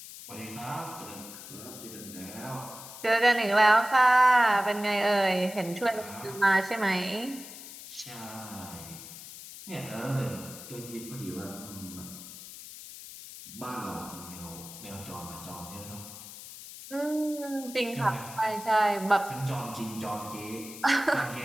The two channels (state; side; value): noise; left; hiss, 14 dB below the sound